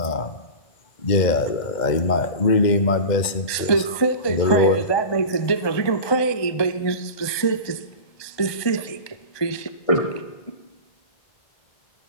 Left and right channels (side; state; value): right; late; 1.2 ms